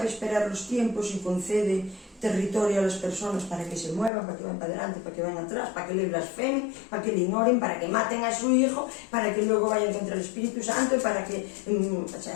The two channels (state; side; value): drops out; right; at 4.1 s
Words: esperar los tiempos y concede territorio a las personas para que se muevan, para que vayan para adelante, para que vayan atrás, para que le blasfemen, para que le ignoren, para que maten a su hijo, para que luego vayan contra el Espíritu Santo, para que